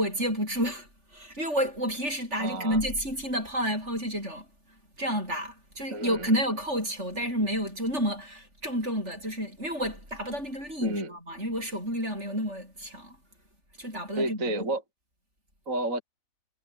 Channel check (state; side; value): late; left; 3.4 ms